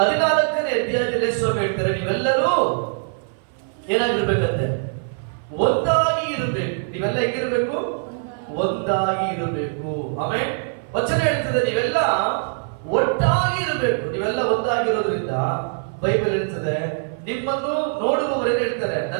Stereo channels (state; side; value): silent; left; 56 dB below the other